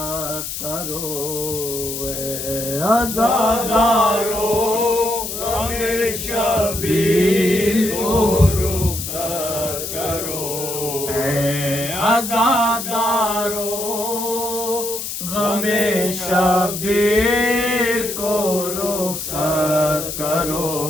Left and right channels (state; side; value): noise; left; hiss, 6 dB below the sound